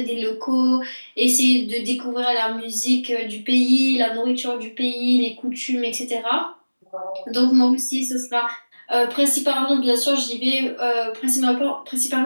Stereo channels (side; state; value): both; inverted; correlation -1.00